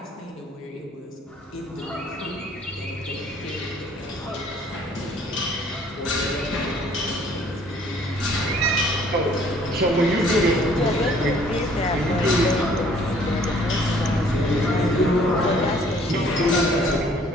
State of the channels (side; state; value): both; normal; correlation 0.58